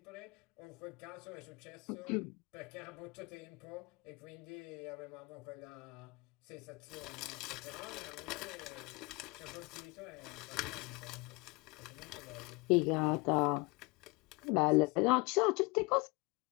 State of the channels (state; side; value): quieter; right; 26.7 dB